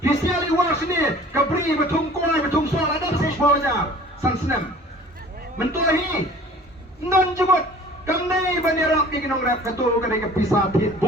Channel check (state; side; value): normal; both; correlation 0.47